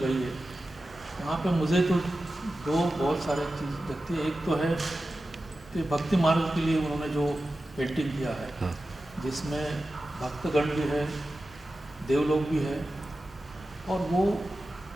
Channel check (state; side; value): normal; both; correlation 0.93